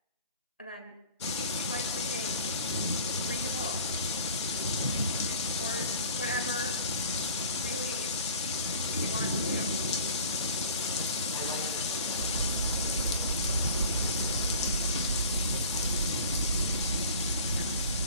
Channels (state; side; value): inverted; both; correlation -0.44